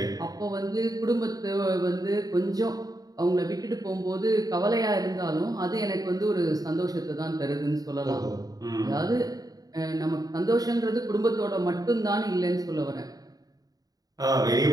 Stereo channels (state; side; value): late; left; 0.18 ms